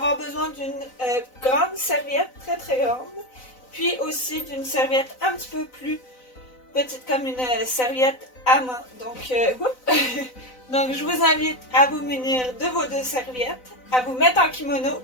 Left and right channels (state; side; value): late; right; 4.0 ms